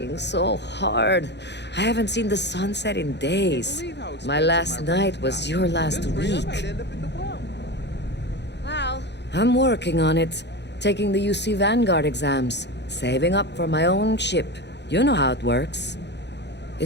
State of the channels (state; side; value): late; right; 0.50 ms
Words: so hard. I haven't seen the sunset in days. My last night was your last week. Well, I'm working on it. Taking the UC Vanguard exams. Saving up for my own ship. You know how it works.